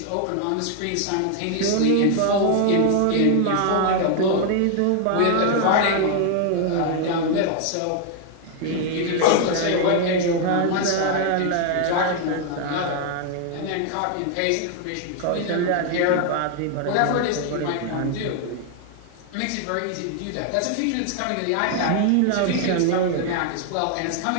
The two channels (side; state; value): both; different; correlation 0.00